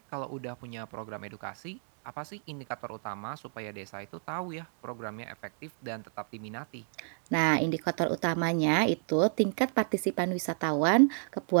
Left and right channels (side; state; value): left; silent; 57 dB below the other